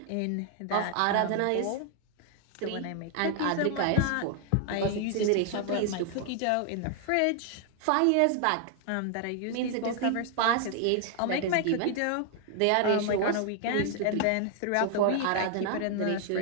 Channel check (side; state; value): both; different; correlation 0.00